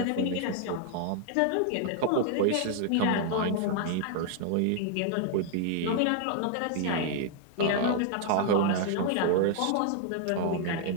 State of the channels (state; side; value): different; both; correlation 0.00